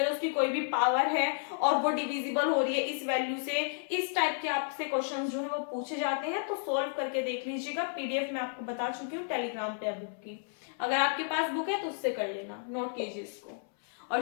उसकी कोई भी पावर है और वो डिविजिबल हो रही है इस वैल्यू से, इस टाइप के आपसे क्वेश्चन जो है वो पूछे जाते हैं। तो सोल्व करके देख लीजिएगा, पीडीएफ में आपको बता चुकी हूँ टेलीग्राम पे बुक की, अगर आपके पास बुक है तो उससे कर लेना, नोट कीजिए इसको,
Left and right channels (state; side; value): silent; right; 56 dB below the other